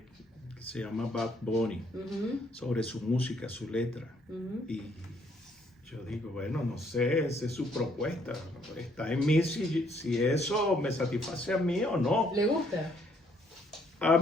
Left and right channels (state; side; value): normal; both; correlation 0.68